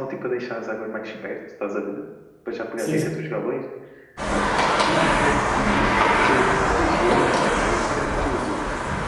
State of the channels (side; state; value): both; identical; correlation 1.00